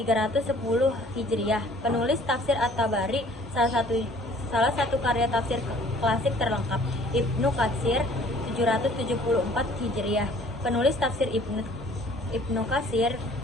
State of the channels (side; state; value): both; normal; correlation 0.54